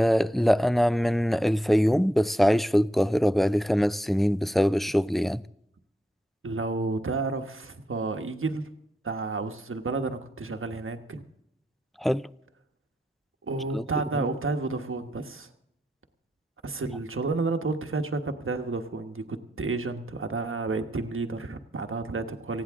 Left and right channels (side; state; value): both; normal; correlation 0.81